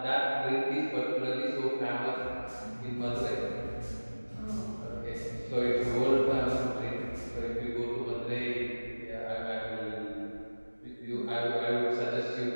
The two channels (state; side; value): inverted; both; correlation -1.00